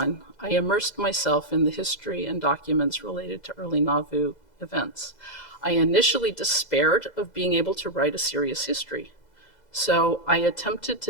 I immersed myself in the history and documents related to early Nauvoo events. I initially despaired of being able to write a serious history, so I attempted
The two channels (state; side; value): late; right; 2.0 ms